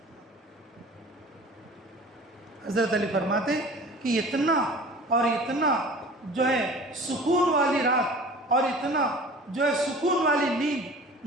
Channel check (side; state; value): both; normal; correlation 0.42